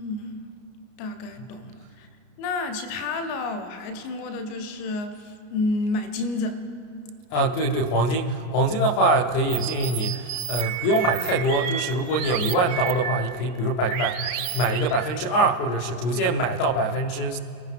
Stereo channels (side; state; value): right; late; 33 ms